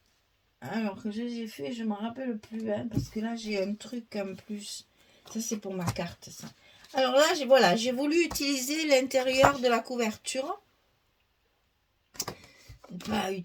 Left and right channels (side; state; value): both; identical; correlation 1.00